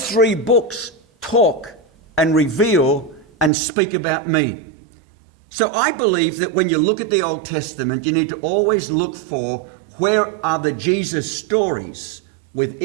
three books talk and reveal and speak about me. So I believe that when you look at the Old Testament, you need to always look for where are the Jesus stories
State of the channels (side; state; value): left; drops out; at 3.5 s